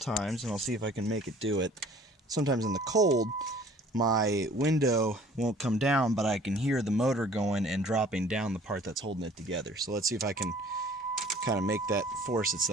and I'll see if I can make it do it, sometimes in the cold, my window won't come down, but I can hear the motor going and dropping down the part that's holding it together. So let's see if I can kind of make that force it so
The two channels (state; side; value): normal; both; correlation 0.52